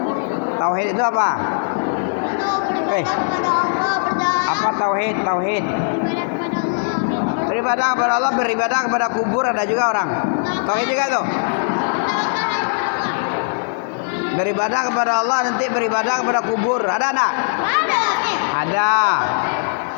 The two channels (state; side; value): silent; right; 66 dB below the other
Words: Tauhid itu apa? Itu Apa tauhid? Tauhid. beribadah kepada Allah. Beribadah kepada kubur, ada juga orang. Tauhid juga tuh. Beribadah kepada Allah, nanti beribadah kepada kubur. Ada enggak? Ada.